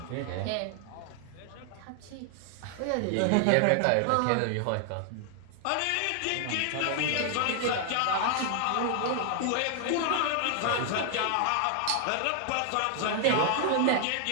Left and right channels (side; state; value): both; different; correlation 0.00